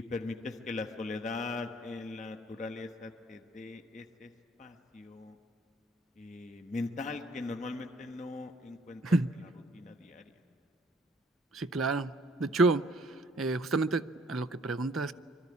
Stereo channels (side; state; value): both; normal; correlation 0.61